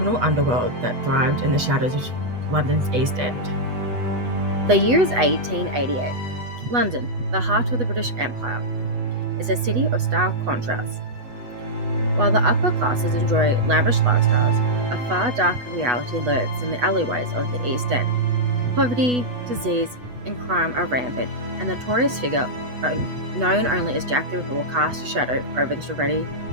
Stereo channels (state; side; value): late; left; 8.1 ms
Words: underworld that thrived in the shadows of London's East End. The year is 1888. London, the heart of the British Empire, is a city of stark contrasts. While the upper classes enjoy lavish lifestyles, a far darker reality lurks in the alleyways of the East End. Poverty, disease, and crime are rampant, and the notorious figure, known only as Jack the Ripper, will cast a shadow over this already